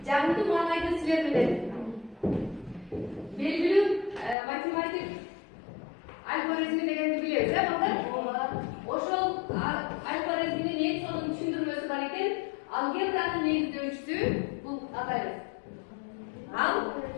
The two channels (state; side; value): drops out; right; at 4.4 s